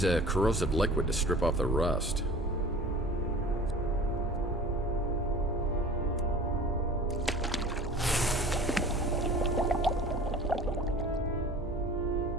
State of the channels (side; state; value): both; normal; correlation 0.42